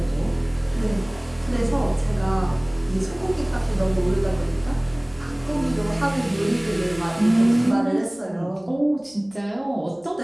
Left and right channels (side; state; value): right; noise; hum, 30 dB below the sound